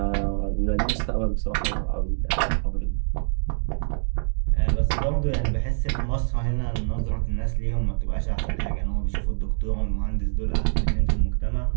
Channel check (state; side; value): silent; left; digital silence